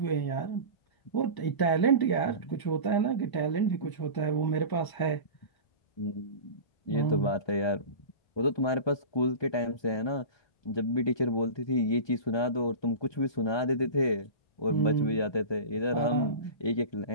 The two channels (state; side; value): late; right; 1.2 ms